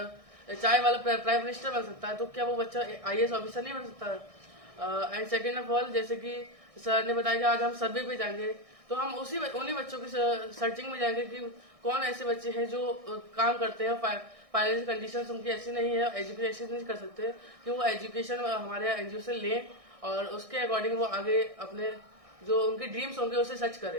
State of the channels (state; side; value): late; left; 1.6 ms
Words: चाय वाला प्राइम मिनिस्टर बन सकता है, तो क्या वो बच्चा IAS ऑफिसर नहीं बन सकता है? एंड सेकेंड ऑफ ऑल, जैसे कि सर ने बताया कि आज हम सर्वे पे जाएंगे, तो हम उन्हीं बच्चों की सर्चिंग में जाएंगे कि कौन ऐसे बच्चे हैं जो काम करते हैं, फाइनेंशियल कंडीशंस उनकी ऐसी नहीं है, एजुकेशन नहीं कर सकते, कि वो एजुकेशन हमारे एनजीओ से लें और उसके अकॉर्डिंग वो आगे अपने जो उनके ड्रीम्स होंगे उसे सच